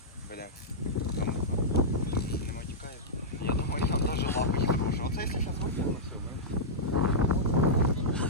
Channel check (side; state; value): both; normal; correlation -0.12